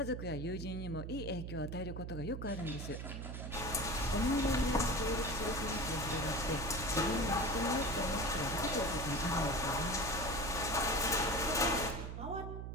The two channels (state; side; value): noise; right; hum, 6 dB below the sound